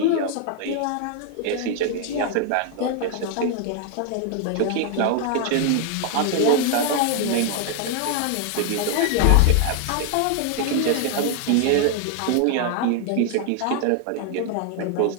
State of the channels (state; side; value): different; both; correlation 0.00